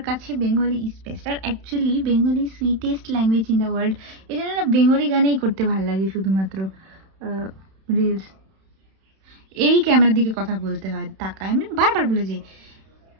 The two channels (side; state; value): left; late; 31 ms